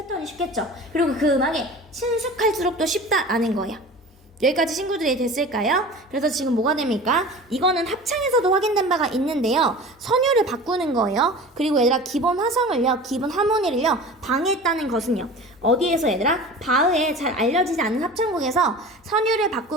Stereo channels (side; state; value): both; normal; correlation 0.37